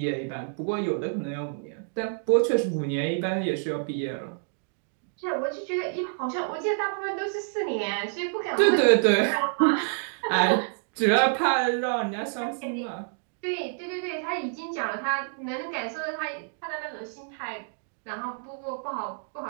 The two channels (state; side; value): silent; left; digital silence